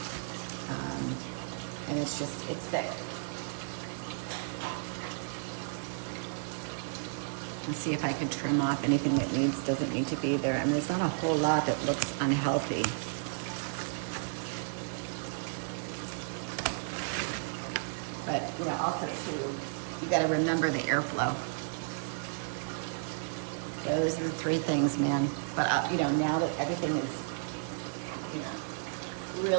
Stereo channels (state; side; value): silent; left; 56 dB below the other